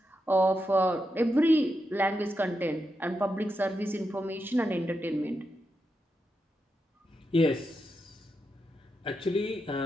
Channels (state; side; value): normal; both; correlation 0.86